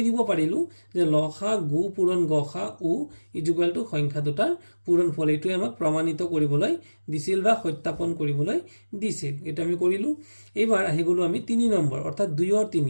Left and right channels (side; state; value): both; inverted; correlation -1.00